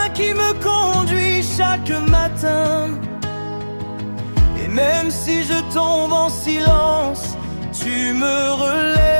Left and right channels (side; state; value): both; inverted; correlation -1.00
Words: qui me conduit chaque matin. Et même si je tombe en silence, tu me